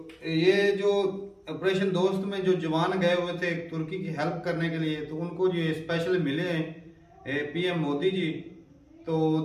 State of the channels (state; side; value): identical; both; correlation 1.00